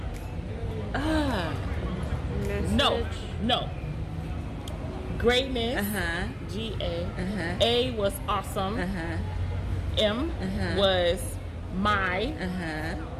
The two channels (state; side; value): identical; both; correlation 1.00